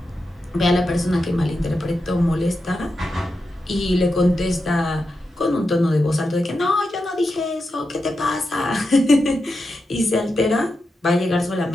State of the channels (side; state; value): both; normal; correlation 0.88